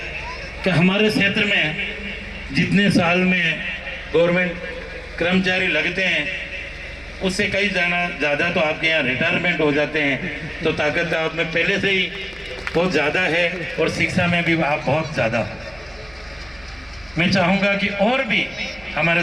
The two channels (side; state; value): right; noise; hum, 26 dB below the sound